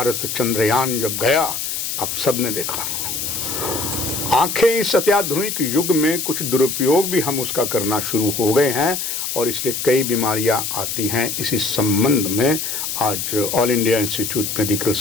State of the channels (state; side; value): noise; left; hiss, 3 dB below the sound